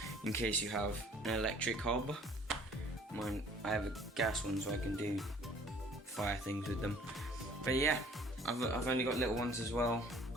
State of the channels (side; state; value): both; normal; correlation 0.55